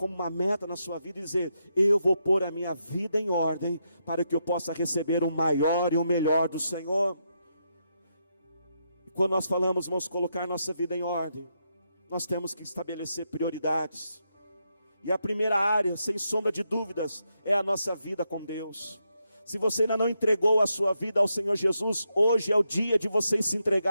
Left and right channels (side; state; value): both; inverted; correlation -0.82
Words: uma meta na sua vida e dizer: eu vou pôr a minha vida em ordem para que eu possa receber o maior e o melhor do Senhor. E quando nós falamos, vamos colocar nossa vida em ordem, nós temos que estabelecer prioridades. E a primeira área, sem sombra de dúvidas, é a nossa vida com Deus. Se você ainda não entregou a sua vida ao Senhor Jesus, hoje é o dia de você se